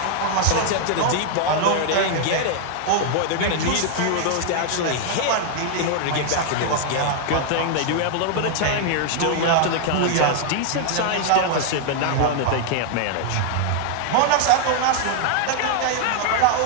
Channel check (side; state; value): both; different; correlation 0.00